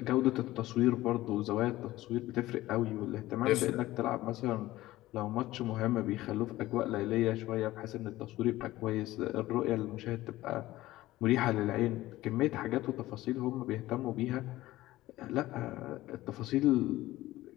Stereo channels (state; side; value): quieter; right; 16.7 dB